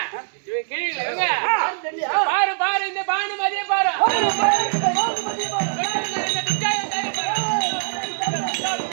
பாரு பாரு இந்த பானு மாதிரியே பாரு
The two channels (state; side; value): silent; left; 60 dB below the other